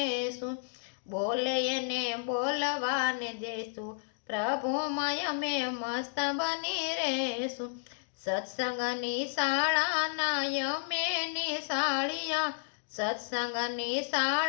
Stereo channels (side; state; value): right; silent; digital silence